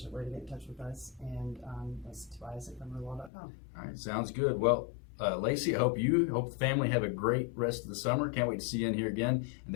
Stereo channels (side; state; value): right; drops out; at 3.3 s